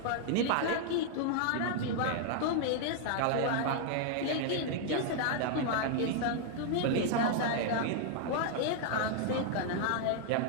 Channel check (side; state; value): both; different; correlation 0.00